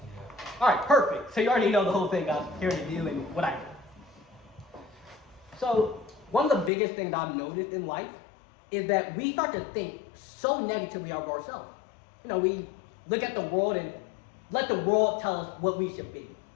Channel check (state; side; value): drops out; right; at 6.7 s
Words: All right, perfect. So you already know the whole thing I'm here to do and what I do. So one of the biggest things I've noticed in life is that we start to think so negatively of ourselves. You know, we look at the world and let the world tell us what we should be.